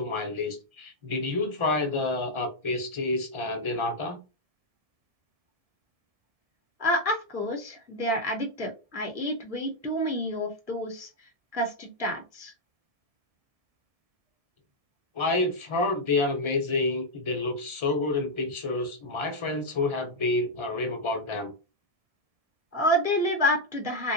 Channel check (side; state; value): left; late; 1.7 ms